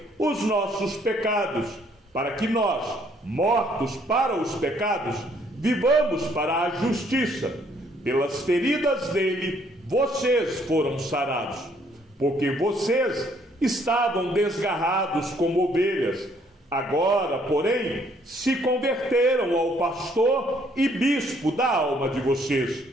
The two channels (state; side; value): normal; both; correlation 0.65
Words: os nossos pecados, para que nós, mortos para os pecados, vivamos para a justiça. Pelas feridas dele, vocês foram sarados, porque vocês estavam desgarrados como ovelhas. Agora, porém, se converteram ao pastor e bispo da alma de vocês.